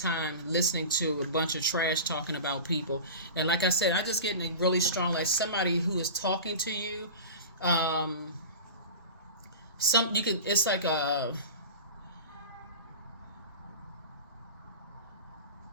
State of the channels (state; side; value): inverted; both; correlation -0.32